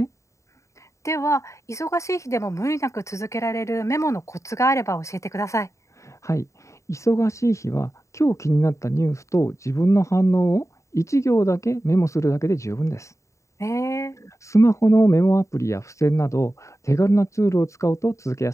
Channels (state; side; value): late; right; 0.14 ms